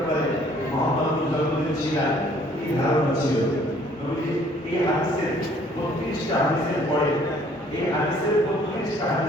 মুহাম্মদ যখন ছিলেন কি ধারণা ছিল নবী এই হাদিসের 32টা হাদিসের পরে এই হাদিসের 32টা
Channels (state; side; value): normal; both; correlation 0.59